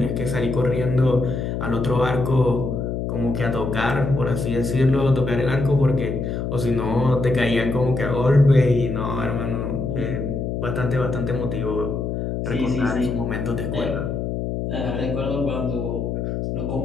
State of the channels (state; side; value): noise; left; hum, 3 dB below the sound